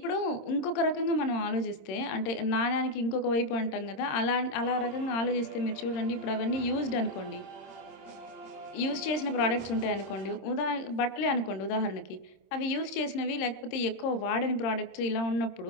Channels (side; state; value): right; late; 26 ms